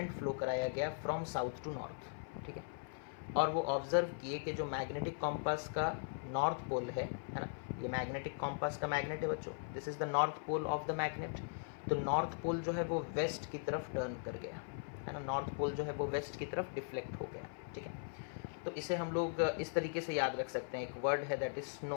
फ्लो कराया गया फ्रॉम साउथ टू नॉर्थ। ठीक है, और वो ऑब्जर्व किए कि जो मैग्नेटिक कॉम्पास का नॉर्थ पोल है ना, ये मैग्नेटिक कॉम्पास का मैग्नेट है बच्चों, this is the north pole of the magnet. तो नॉर्थ पोल जो है वो वेस्ट की तरफ टर्न कर गया, है ना, नॉर्थ पोल जो है वो वेस्ट की तरफ डिफ्लेक्ट हो गया। ठीक है, तो इसे हम लोग इस तरीके से याद रख सकते हैं, एक वर्ड है दैट इज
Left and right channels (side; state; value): right; silent; 51 dB below the other